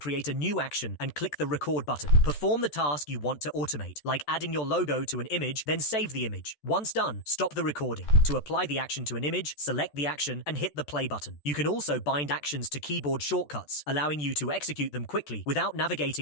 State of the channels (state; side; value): late; right; 14 ms